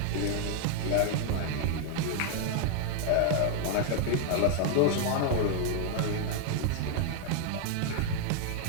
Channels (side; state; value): both; different; correlation 0.00